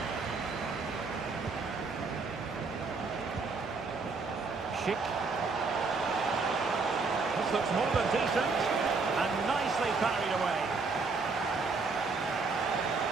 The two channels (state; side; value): quieter; left; 4.3 dB